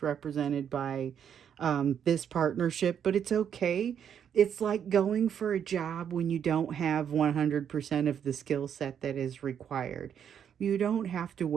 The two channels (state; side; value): quieter; left; 8.5 dB